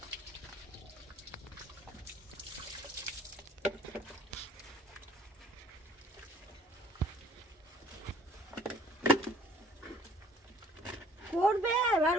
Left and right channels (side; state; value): both; normal; correlation 0.56